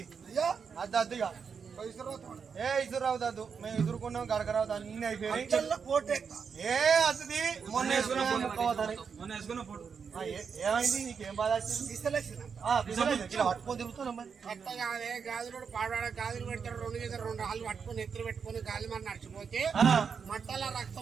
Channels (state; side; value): quieter; left; 6.2 dB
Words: అయ్యా అద్దుగా ఏ ఇసురావు దద్దు మేము ఇసురుకున్నాం గడకరావు అన్ని అయిపోయి ఏ అద్దుది మొన్న వేసుకున్నాం ఏమైంది నీకేం బాధ వచ్చింది పట్టుకొని తిరుగుతున్నాం మరి కట్ట కాదే గాజులు పాడవాడ గాజులు పెడతారు రెండు రాళ్ళు పట్టుకొని ఎత్తులు పెట్టుకొని గాలి మరి నడిచిపోతే మట్టల